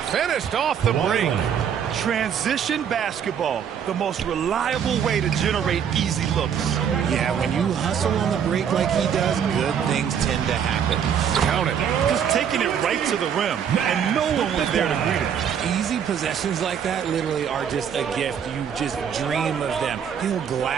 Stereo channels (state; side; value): quieter; left; 8.1 dB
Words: Finished off the break. Transition basketball. The most reliable way to generate easy looks. Yeah, when you hustle on the break like he does, good things tend to happen. Count it. Just taking it right to the rim. And no one was there to greet him. Easy possessions like that literally are just a gift. You just dream of them. He'll